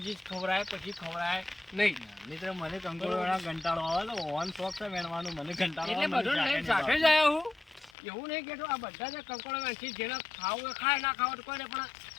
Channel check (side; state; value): right; drops out; at 7.9 s